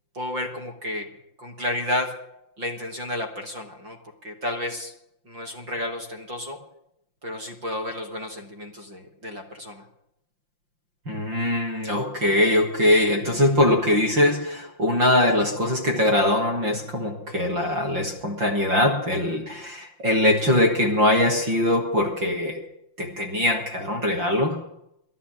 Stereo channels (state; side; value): late; left; 5.7 ms